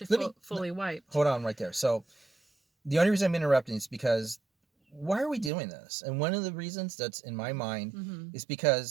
fully wiped. Hold on right there. So, the only reason I'm interrupting is because why are we doing this? And one of the reasons that's in my mind is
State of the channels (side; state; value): left; drops out; at 5.5 s